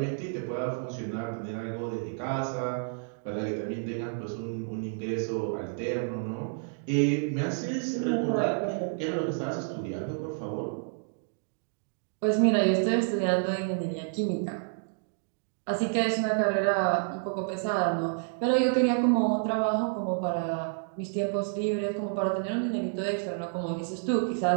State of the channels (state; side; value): silent; left; digital silence